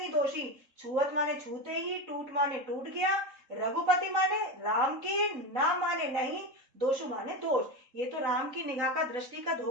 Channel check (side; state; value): left; late; 3.7 ms